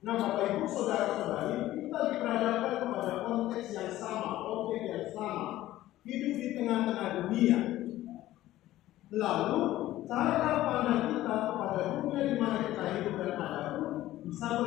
Nah, Bapak Ibu Saudara-saudari, kita diperhadapkan kepada konteks yang sama, objek yang sama, hidup di tengah-tengah dunia. Lalu, cara pandang kita kepada dunia di mana kita hidup dan ada bisa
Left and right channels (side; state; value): right; quieter; 15.0 dB